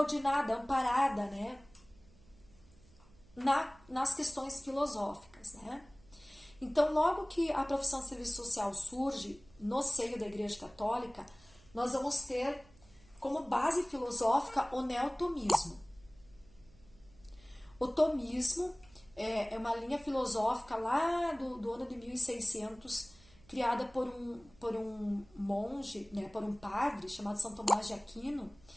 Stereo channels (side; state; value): right; noise; hum, 26 dB below the sound